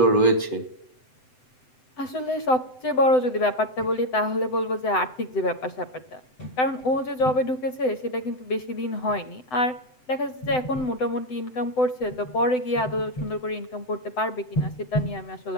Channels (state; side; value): late; right; 7.8 ms